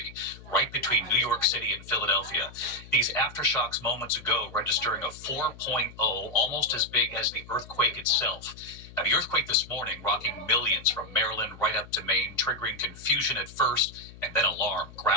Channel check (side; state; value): left; noise; hum, 18 dB below the sound